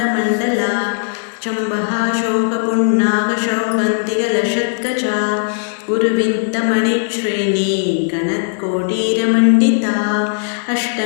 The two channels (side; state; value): right; silent; digital silence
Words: चम्बः शोकपुण्णाकशौकन्तिकलशत्कचा गुरुविन्तमणिश्रेणी गणत्कोटीरमण्डिता